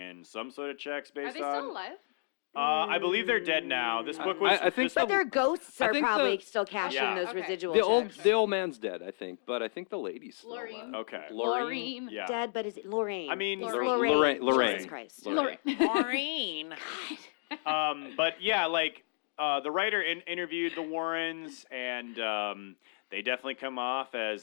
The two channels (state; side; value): silent; right; digital silence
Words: some sort of checks based on? Are they still alive? I believe they're dead now. This book was. I think But their ghosts are think probably the- still cashing Yeah. those Okay. residual checks. the old man's dead, I think, but I think the lady's still Lorraine. alive. Okay. Lorraine. Yeah. Dead, but is it Lorraine? I mean, It's Lorraine. Lorraine. Jesus Christ. Lorraine. Lorraine. But yeah, like the writer interviewed the Warrens, and they definitely come off